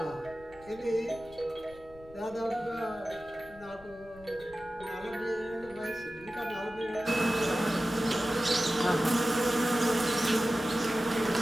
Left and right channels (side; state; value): left; noise; rumble, 22 dB below the sound